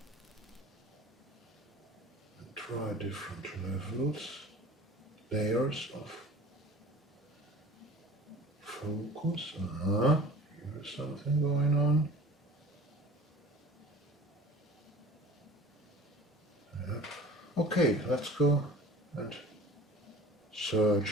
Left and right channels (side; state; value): both; normal; correlation 0.43